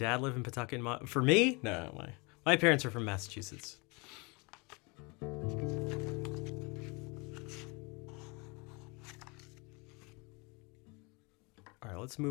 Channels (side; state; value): right; quieter; 28.7 dB